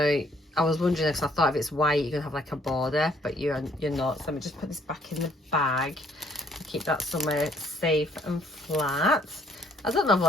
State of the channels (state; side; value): normal; both; correlation 0.64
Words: I was wondering, if I thought if it's white you're gonna have like a border, but you're not. So let me just put this back in the bag and keep that somewhere safe and flat. I don't know if